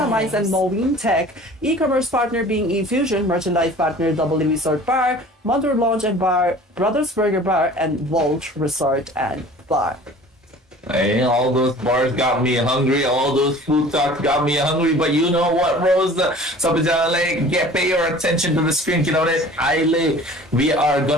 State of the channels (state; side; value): normal; both; correlation 0.45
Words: Mice and Moeen Tech, e-commerce partner being eFusion, merchandise partner Double Resort Bar, Mother Lounge and Bar, Brothers Burger Bar, and Vault Resort and Bar. Hey, all those bars got me hungry. All those food talks got me hungry. But you know what, Rose? Pay your attention to the screen. You know that we are